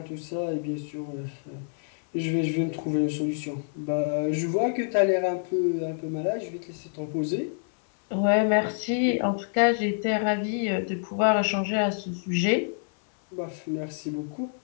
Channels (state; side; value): silent; right; digital silence